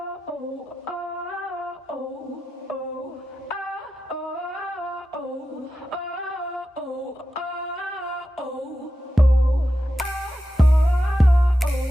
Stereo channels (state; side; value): normal; both; correlation 0.91